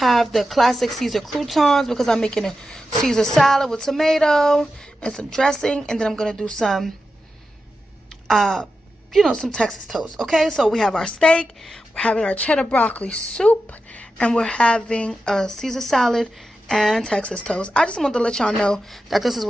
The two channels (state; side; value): normal; both; correlation 0.90